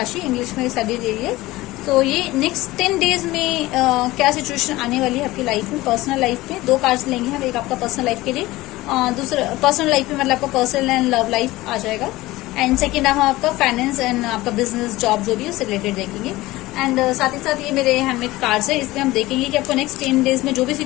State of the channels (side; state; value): right; quieter; 18.6 dB